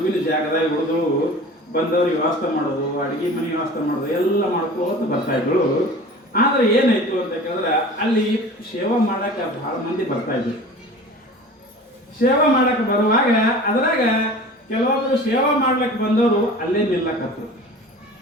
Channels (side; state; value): both; normal; correlation 0.40